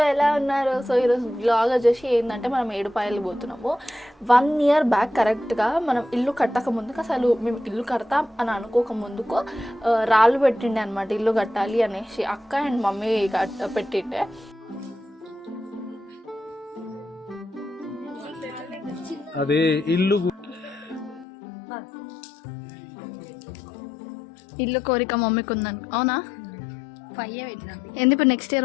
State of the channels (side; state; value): right; drops out; at 21.2 s